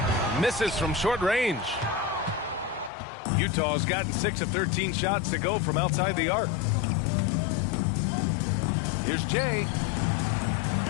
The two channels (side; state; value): right; drops out; at 2.9 s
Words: Misses from short range. Utah's gotten 6 of 13 shots to go from outside the arc. Here's Jay.